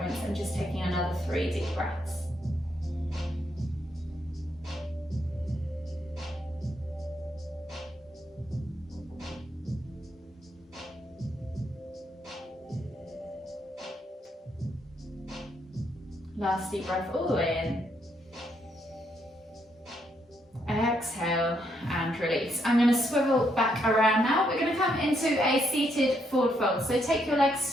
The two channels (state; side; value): normal; both; correlation 0.76